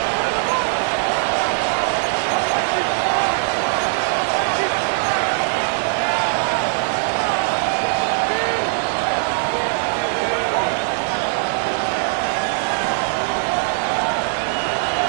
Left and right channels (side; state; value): left; silent; digital silence